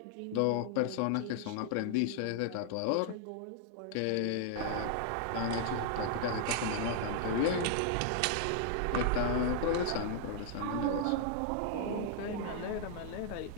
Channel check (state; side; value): different; both; correlation -0.01